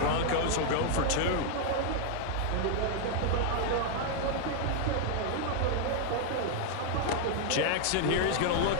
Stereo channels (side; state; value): both; different; correlation 0.00